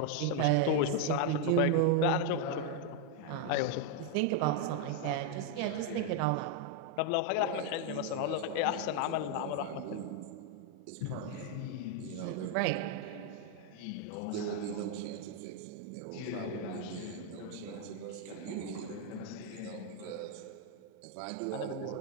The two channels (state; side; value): different; both; correlation 0.01